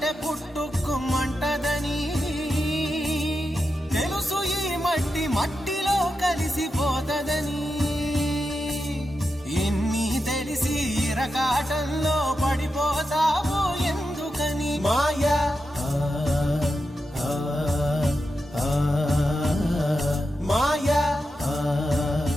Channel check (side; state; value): both; normal; correlation 0.88